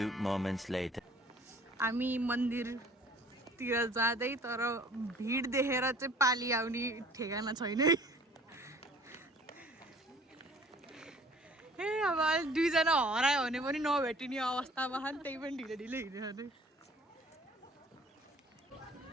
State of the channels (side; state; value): both; normal; correlation 0.52